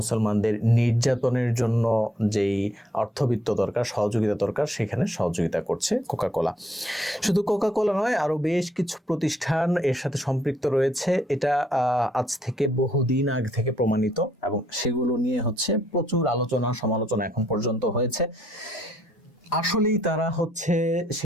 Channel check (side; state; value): both; normal; correlation 0.70